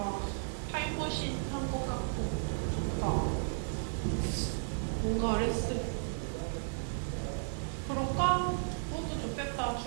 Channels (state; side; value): silent; left; 55 dB below the other